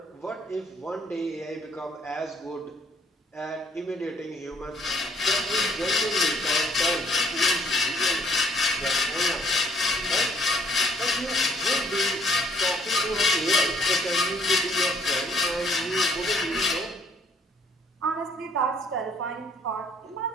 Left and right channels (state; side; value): normal; both; correlation 0.63